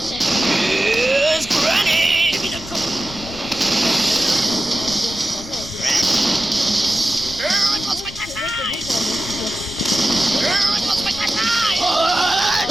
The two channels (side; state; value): left; noise; rumble, 15 dB below the sound